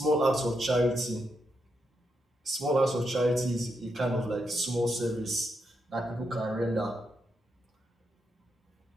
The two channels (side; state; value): both; normal; correlation 0.82